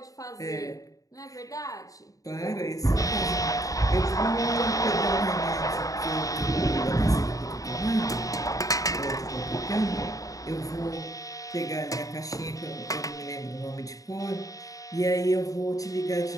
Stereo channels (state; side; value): late; right; 0.17 ms